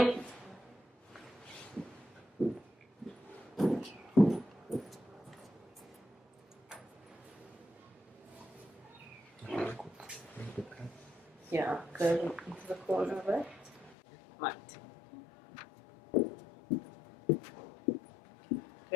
Yeah, go into the corner of it. Right.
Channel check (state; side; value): drops out; right; at 14.0 s